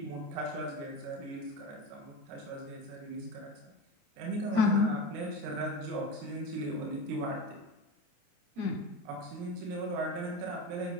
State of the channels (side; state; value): left; late; 29 ms